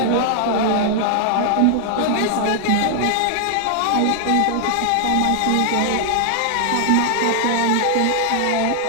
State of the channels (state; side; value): different; both; correlation 0.00